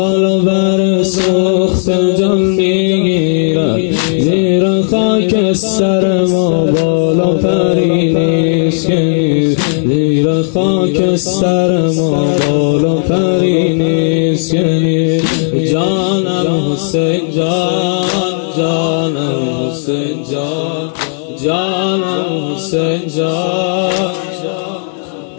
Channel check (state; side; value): silent; right; digital silence